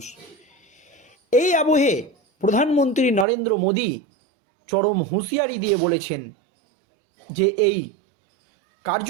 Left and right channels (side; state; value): left; drops out; at 3.2 s